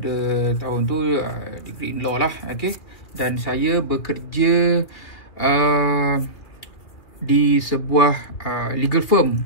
tahun tu degree in law lah. Okey, dan saya bekerja di sebuah legal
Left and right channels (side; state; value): right; late; 2.7 ms